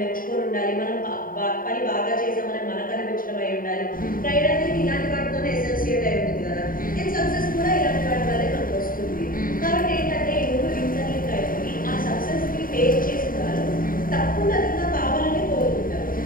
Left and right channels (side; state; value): right; late; 0.41 ms